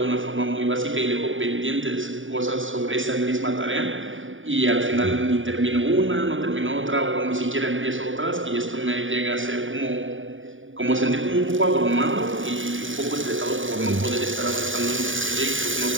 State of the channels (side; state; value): left; late; 0.57 ms